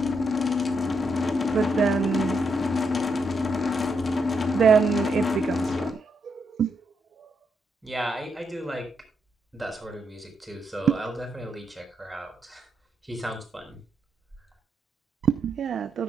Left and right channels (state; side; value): normal; both; correlation 0.80